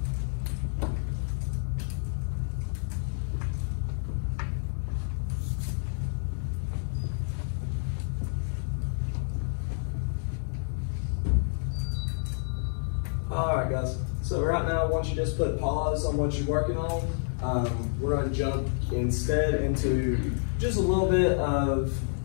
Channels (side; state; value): right; silent; digital silence